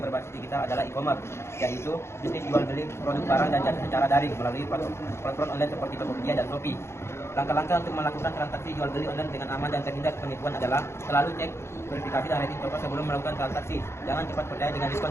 digital adalah e-commerce, yaitu bisnis jual beli produk barang dan jasa secara daring melalui platform online seperti Tokopedia dan Shopee. Langkah-langkah untuk melakukan transaksi jual beli online dengan aman dan terhindar penipuan adalah selalu cek verifikasi dan rating toko sebelum melakukan transaksi. Jangan cepat percaya dengan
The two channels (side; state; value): right; late; 0.13 ms